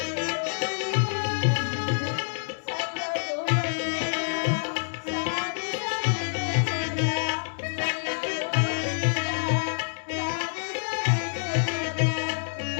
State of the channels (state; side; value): silent; right; digital silence